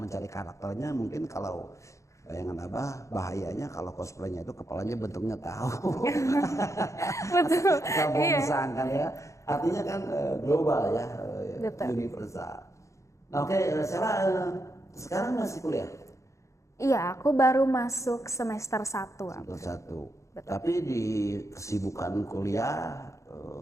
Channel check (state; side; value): late; right; 0.15 ms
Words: karakternya. Mungkin kalau bayangan Abah bahayanya kalau cosplaynya itu kepalanya bentuknya tahu. Betul. Kamu kan ya. Artinya kan global ya, Betul. universal. Nah, oke, Sheila sekarang masih kuliah? Iya, aku baru masuk semester 1. Semester 1. Tapi di kesibukan kuliah